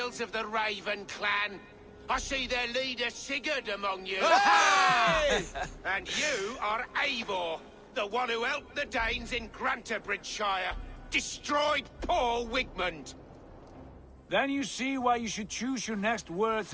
of the Raven clan. I see their leader Sigurd among you. Hey! And you are Eivor, the one who helped the Danes in Grantabridgeshire. Destroyed poor Wigmund. Then you see why you should choose your next words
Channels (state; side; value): identical; both; correlation 1.00